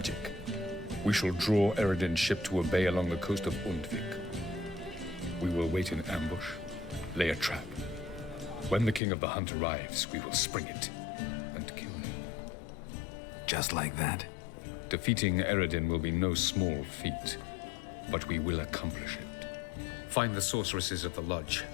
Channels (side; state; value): right; drops out; at 9.0 s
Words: we shall draw Yrden's ship to a bay along the coast of Undvik. We will wait in ambush, lay a trap. When the King of the Hunt arrives, we will spring it and kill him. Just like that? Defeating Yrden will be no small feat, but we will accomplish it. Find the sorceresses of the lodge,